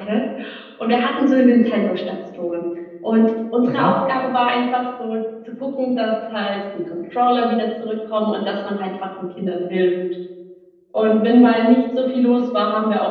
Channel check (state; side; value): identical; both; correlation 1.00